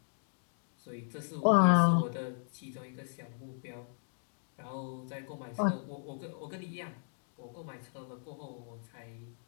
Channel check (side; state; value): right; silent; digital silence